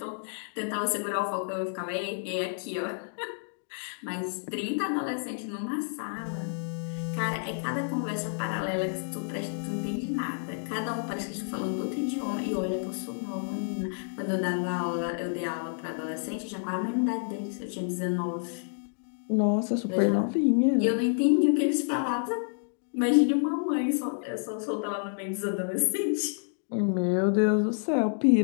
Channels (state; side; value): silent; right; digital silence